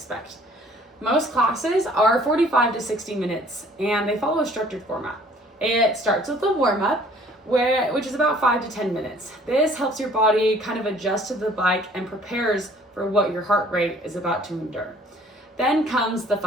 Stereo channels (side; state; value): both; normal; correlation 0.55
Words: Most classes are 45 to 60 minutes and they follow a structured format. It starts with a warm-up, which is about 5 to 10 minutes. This helps your body kind of adjust to the bike and prepares for what your heart rate is about to endure. Then comes the